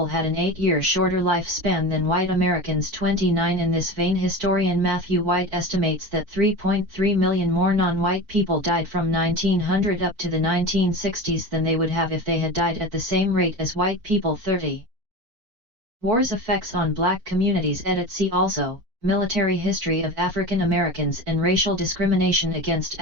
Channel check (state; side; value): late; left; 4.4 ms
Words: had an 8-year shorter lifespan than white Americans. 29 In this vein, historian Matthew White estimates that 3.3 million more non-white people died from 1900 up to the 1960s than they would have if they had died at the same rate as white people. 30. War's effects on black communities. Edit. See also, Military history of African Americans and racial discrimination against